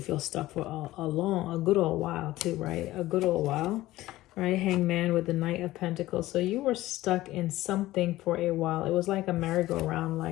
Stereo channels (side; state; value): right; quieter; 16.6 dB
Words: feel stuck for a good old while too, right? A good old while, right? Hangman with the Knight of Pentacles. So you were stuck in something for a while. It was like a merry-go-round,